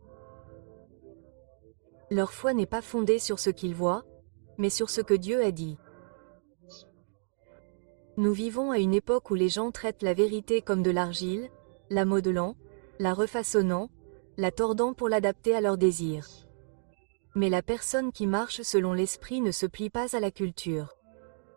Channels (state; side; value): silent; left; digital silence